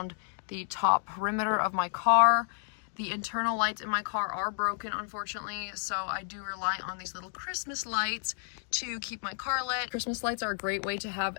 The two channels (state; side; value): silent; right; digital silence